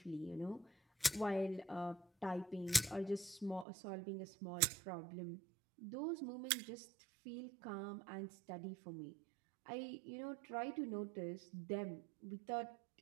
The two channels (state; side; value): drops out; left; at 3.7 s